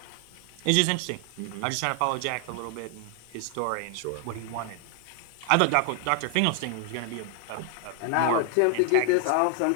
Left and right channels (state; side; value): different; both; correlation 0.00